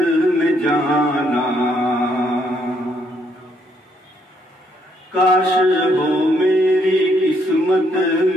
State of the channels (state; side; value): normal; both; correlation 0.72